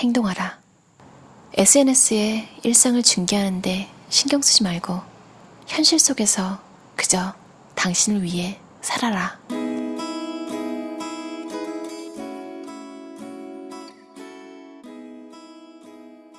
SNS에 일상을 중계하는데 신경 쓰지 말고 현실 속에서 그저 당신을 위해 살아라.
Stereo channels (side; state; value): both; identical; correlation 1.00